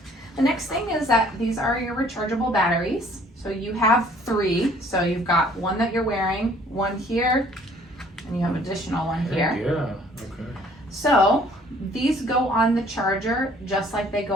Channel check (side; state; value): both; normal; correlation 0.57